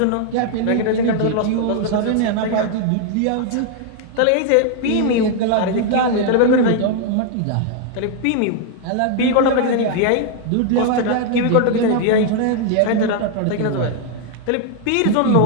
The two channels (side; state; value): both; different; correlation 0.00